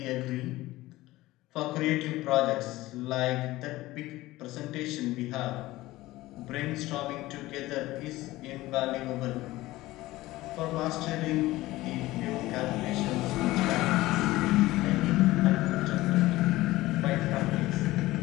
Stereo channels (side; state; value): right; quieter; 17.9 dB